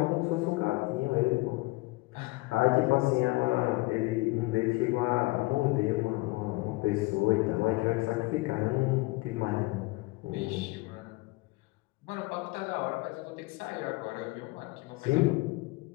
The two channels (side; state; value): right; quieter; 22.6 dB